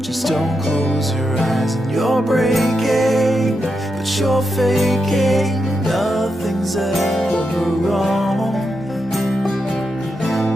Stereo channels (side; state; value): both; normal; correlation 0.85